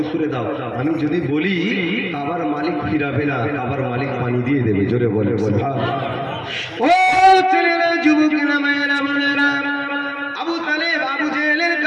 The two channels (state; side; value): identical; both; correlation 1.00